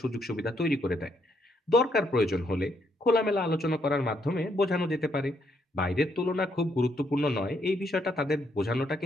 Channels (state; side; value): normal; both; correlation 0.74